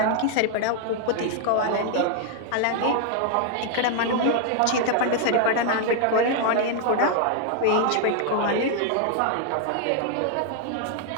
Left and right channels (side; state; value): both; different; correlation 0.00